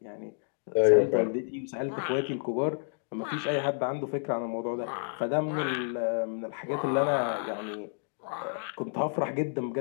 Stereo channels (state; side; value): silent; right; digital silence